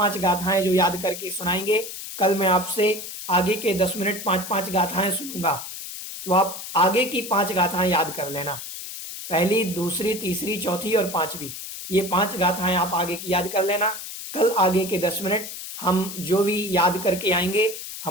गाथाएं जो याद करके सुनाएंगे, कल मैं आपसे आगे के 10 मिनट 5-5 गाथाएं सुनूंगा, तो आप आगे की 5 गाथाएं याद कर लेना। पहली, दूसरी, तीसरी, चौथी और 5वीं, ये 5 गाथाएं आप आगे की याद कर लेना। कल आगे के 10 मिनट हम जो भी याद करके आएंगे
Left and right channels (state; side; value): noise; left; hiss, 9 dB below the sound